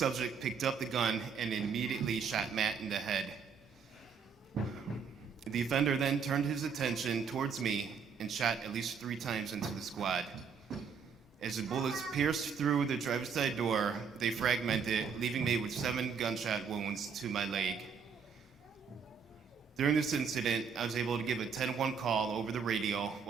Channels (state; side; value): quieter; left; 6.2 dB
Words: picked up the gun and immediately shot Matt in the head. The offender then turned his attention towards me and shot at least 3 times into the squad. As the bullets pierced through the driver's side door, they fragmented, leaving me with 7 gunshot wounds to my leg. During this incident, I was able to give a 10-1 call over the radio